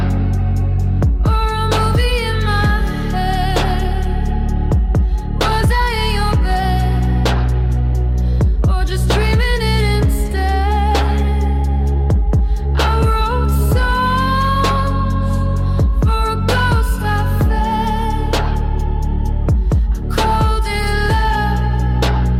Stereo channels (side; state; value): both; identical; correlation 1.00